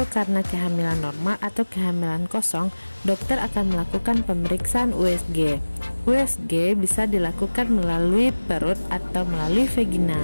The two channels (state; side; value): inverted; both; correlation -1.00